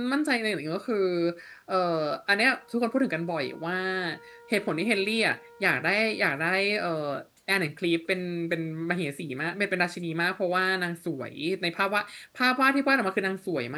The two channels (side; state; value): both; identical; correlation 1.00